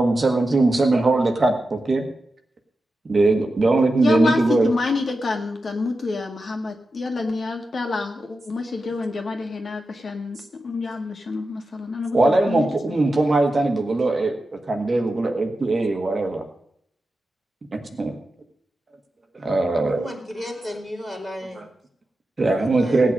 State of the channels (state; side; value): normal; both; correlation 0.91